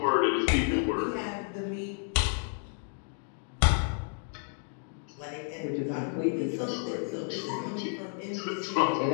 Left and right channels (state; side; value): silent; right; 57 dB below the other